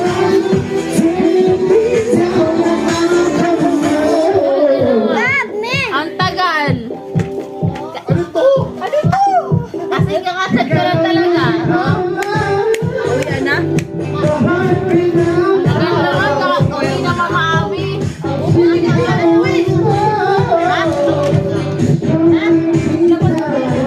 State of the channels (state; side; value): identical; both; correlation 1.00